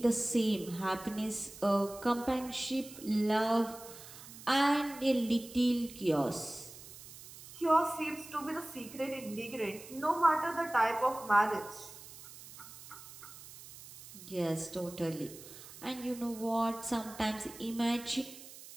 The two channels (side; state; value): right; noise; hiss, 16 dB below the sound